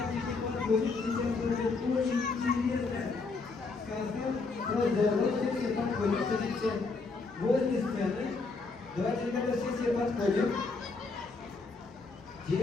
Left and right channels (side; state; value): right; quieter; 4.0 dB